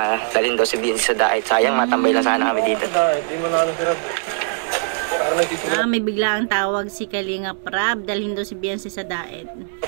dalhin daw si Beyonce sa daet. Sayang, matambay lang sana kami dito. May biglaang tawag si Kalingap Rab, dalhin daw si Beyonce sa daet.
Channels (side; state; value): left; silent; 63 dB below the other